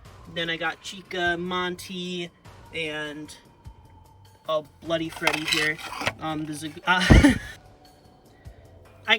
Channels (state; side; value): identical; both; correlation 1.00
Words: Then I got Chica, Monty, and Bloody Freddy here. I